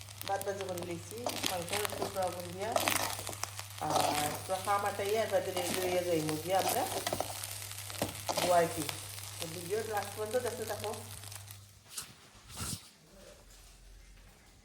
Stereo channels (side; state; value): both; identical; correlation 1.00